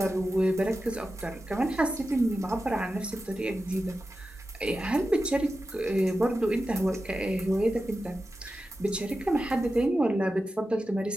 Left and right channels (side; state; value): both; normal; correlation 0.92